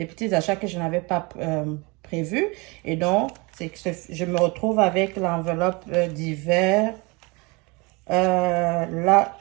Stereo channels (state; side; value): quieter; left; 27.2 dB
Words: petits achats que je n'avais pas prévus. Et donc, c'est que je me retrouve avec l'enveloppe d'hiver. Là,